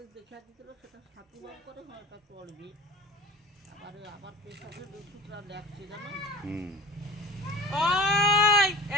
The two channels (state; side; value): normal; both; correlation 0.38